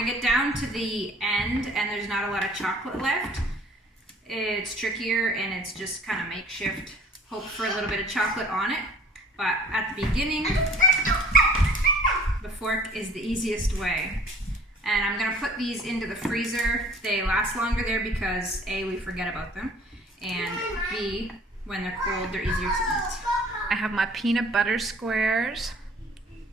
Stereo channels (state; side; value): normal; both; correlation 0.52